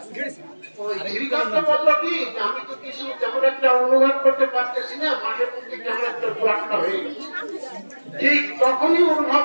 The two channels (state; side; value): inverted; both; correlation -1.00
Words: শ্রীকান্ত বললো কি আমি তো কিছু তেমন একটা অনুভব করতে পারতেছি না, মাঝে মধ্যে কেমন একটা ব্লকটা হয়ে গেছে। ঠিক তখনই অনুভব